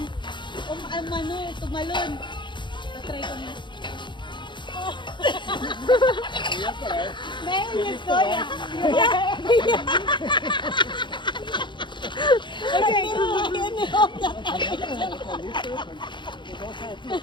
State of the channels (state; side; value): late; right; 0.23 ms